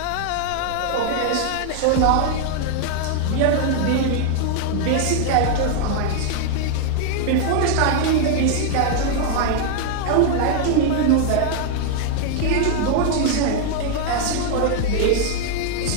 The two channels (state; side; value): different; both; correlation 0.00